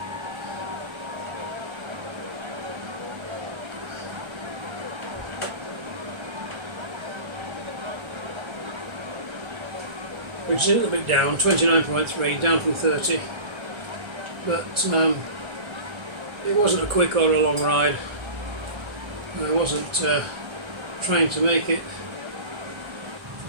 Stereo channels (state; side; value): late; left; 1.3 ms